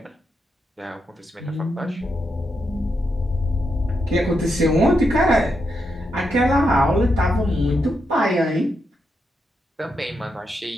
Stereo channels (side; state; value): both; normal; correlation 0.83